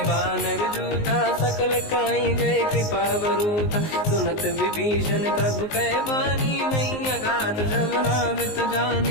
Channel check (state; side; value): late; right; 19 ms